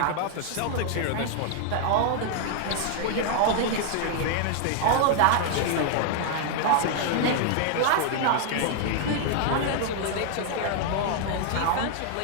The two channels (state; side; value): different; both; correlation 0.00